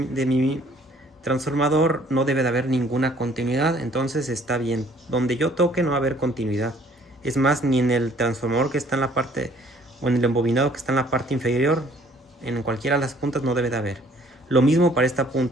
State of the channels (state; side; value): normal; both; correlation 0.59